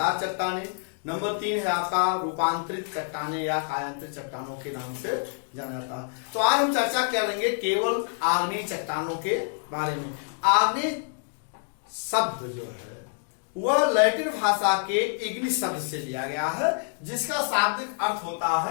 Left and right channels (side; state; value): right; silent; 60 dB below the other